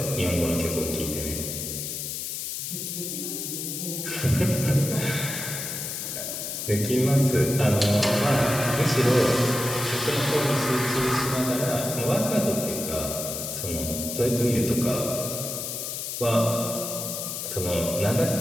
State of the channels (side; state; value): left; noise; hiss, 5 dB below the sound